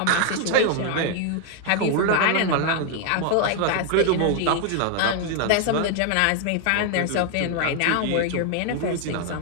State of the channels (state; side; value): different; both; correlation 0.00